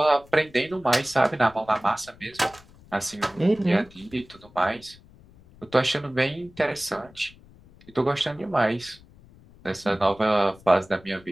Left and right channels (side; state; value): left; noise; rumble, 25 dB below the sound